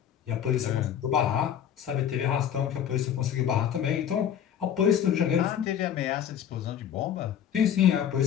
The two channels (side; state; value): right; quieter; 9.3 dB